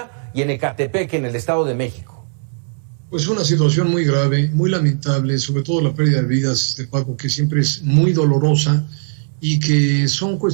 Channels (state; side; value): silent; left; digital silence